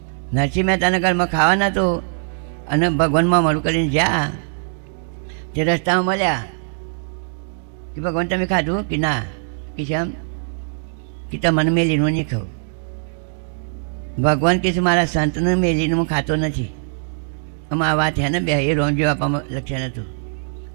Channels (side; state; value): left; silent; digital silence